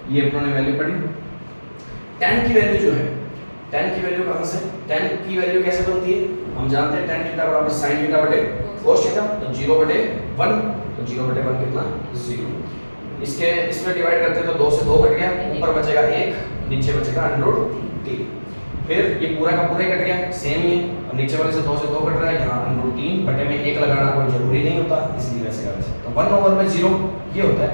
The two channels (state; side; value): inverted; both; correlation -1.00